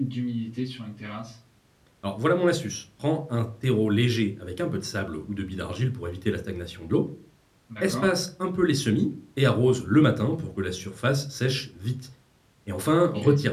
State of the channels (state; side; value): identical; both; correlation 1.00